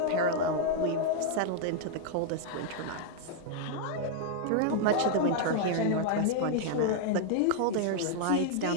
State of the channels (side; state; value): both; different; correlation 0.00